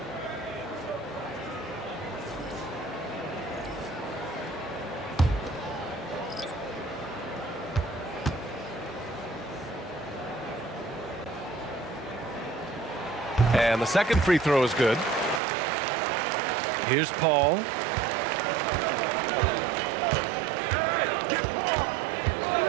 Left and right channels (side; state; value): left; drops out; at 15.4 s